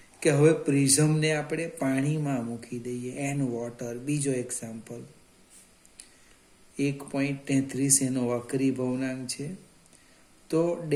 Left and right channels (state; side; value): identical; both; correlation 1.00